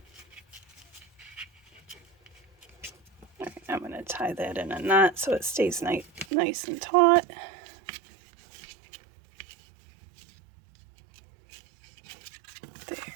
All right, I'm going to tie that in a knot so it stays nice and taut. There.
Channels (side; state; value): left; drops out; at 6.2 s